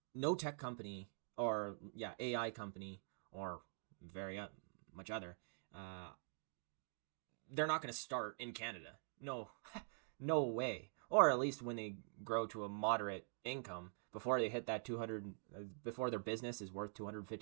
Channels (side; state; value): left; silent; digital silence